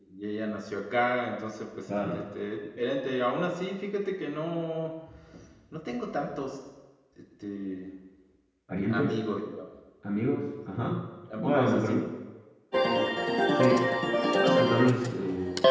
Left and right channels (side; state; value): both; identical; correlation 1.00